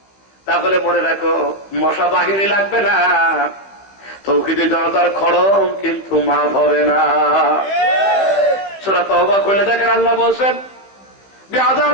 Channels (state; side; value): late; right; 15 ms